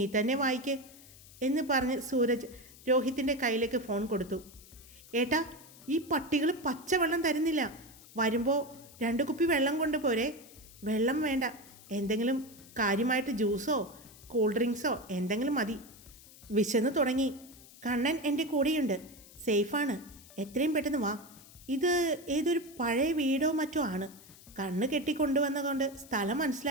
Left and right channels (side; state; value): left; noise; hiss, 21 dB below the sound